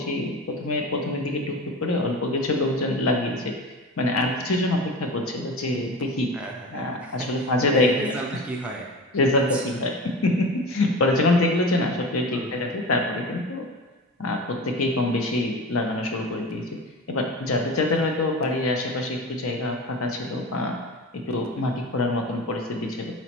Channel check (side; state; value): both; normal; correlation 0.31